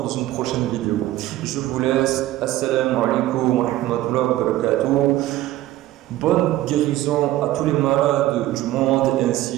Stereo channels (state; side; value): quieter; left; 15.3 dB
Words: dans une prochaine vidéo. Je vous laisse. Assalamu alaikum wa rahmatullahi wa barakatuh. Bonne guérison à tous les malades du monde